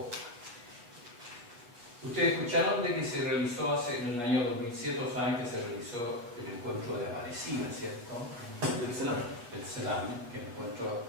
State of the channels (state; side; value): late; left; 8.5 ms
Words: Ustedes escucharon de que se realizó en el año 2007, saben que se realizó el encuentro de Aparecida, ¿cierto? El Selam. El Selam, que es el encuentro